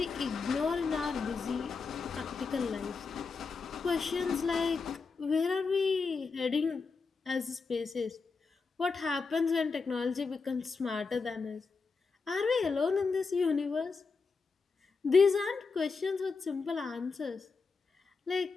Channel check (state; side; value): quieter; right; 4.7 dB